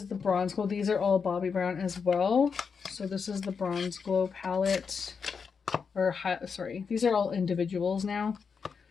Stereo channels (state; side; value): quieter; right; 5.8 dB